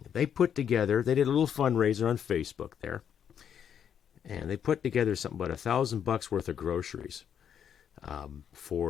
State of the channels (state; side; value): quieter; right; 8.5 dB